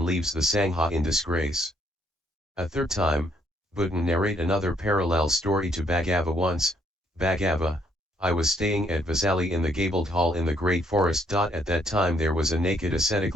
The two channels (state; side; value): normal; both; correlation 0.69